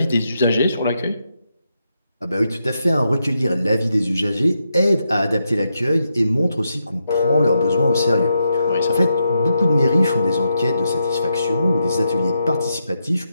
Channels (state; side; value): inverted; both; correlation -0.83